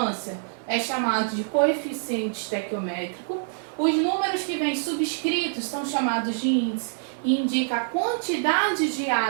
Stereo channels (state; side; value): silent; left; 61 dB below the other